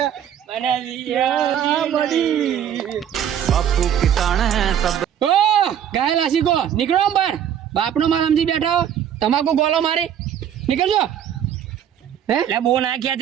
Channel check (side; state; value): left; quieter; 9.6 dB